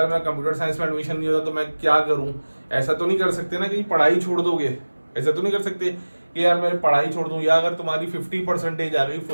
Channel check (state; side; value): inverted; both; correlation -1.00